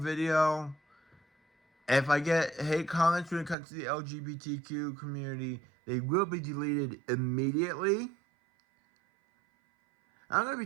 if I get hate comments when it comes to the LGBTQ community, they will be deleted immediately. I'm going to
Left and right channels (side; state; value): left; drops out; at 3.6 s